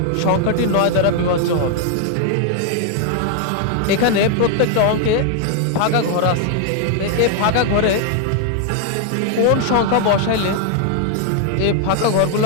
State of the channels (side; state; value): both; different; correlation 0.00